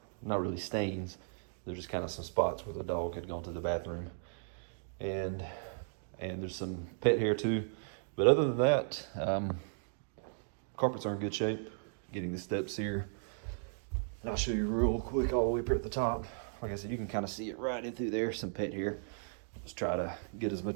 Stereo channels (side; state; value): left; silent; digital silence